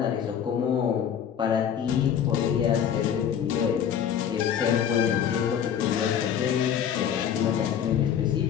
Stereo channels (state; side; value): quieter; right; 8.8 dB